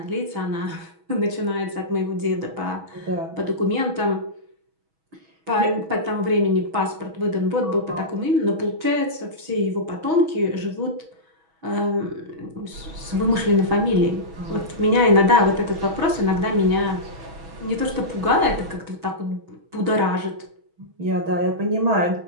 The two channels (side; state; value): left; late; 6.2 ms